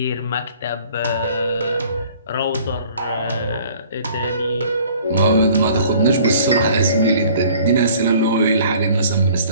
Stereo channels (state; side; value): inverted; both; correlation -0.53